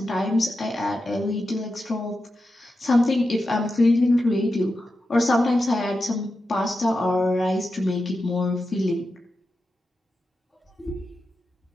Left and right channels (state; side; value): normal; both; correlation 0.90